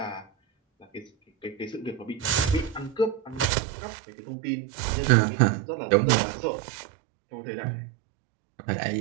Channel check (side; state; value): left; drops out; at 3.5 s